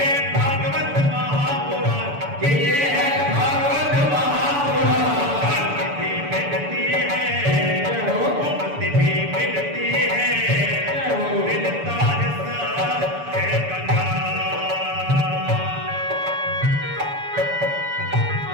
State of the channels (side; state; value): left; late; 7.0 ms